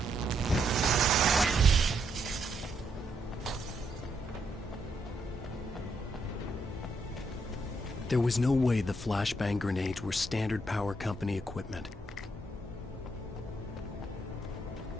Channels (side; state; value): both; normal; correlation 0.76